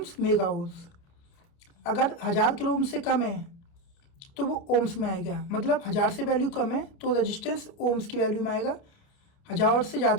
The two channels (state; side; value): late; right; 29 ms